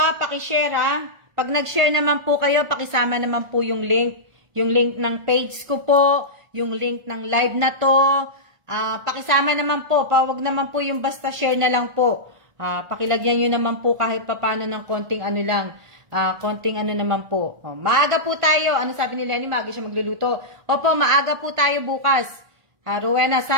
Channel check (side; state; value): left; late; 1.5 ms